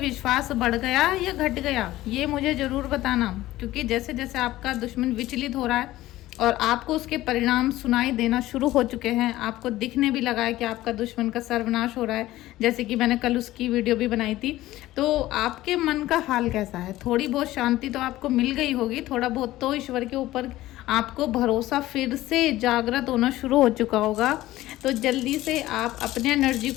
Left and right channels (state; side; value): quieter; right; 16.0 dB